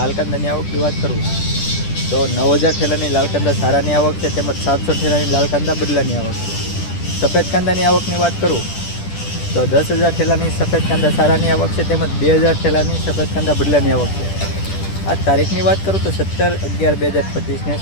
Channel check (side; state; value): right; late; 10 ms